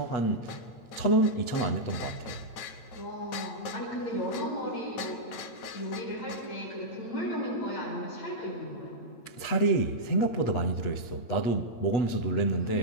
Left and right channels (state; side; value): late; right; 8.3 ms